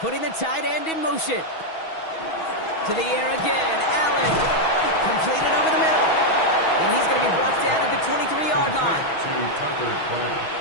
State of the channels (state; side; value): late; right; 6.2 ms